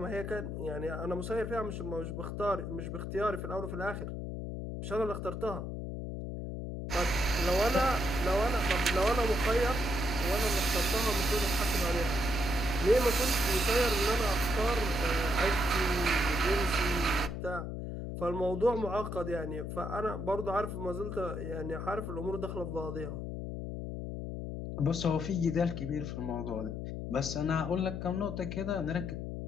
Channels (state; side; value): noise; left; hum, 5 dB below the sound